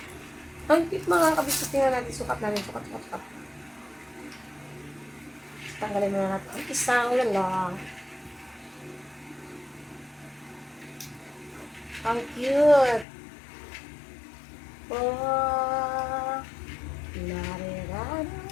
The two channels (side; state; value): right; drops out; at 13.1 s